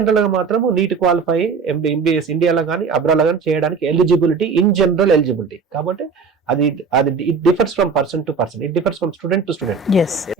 గా మాత్రం నీట్ క్వాలిఫై ఎంబీబీఎస్ ఇండియాలో కానీ అబ్రాడ్ కానీ చేయడానికి ఎలిజిబిలిటీ, ఇన్ జనరల్ ఎలిజిబిలిటీ. కాబట్టి అది అది it differs from person to person, it differs from student to student.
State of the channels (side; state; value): left; quieter; 5.1 dB